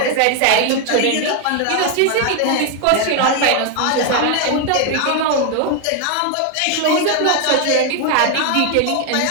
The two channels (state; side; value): different; both; correlation 0.01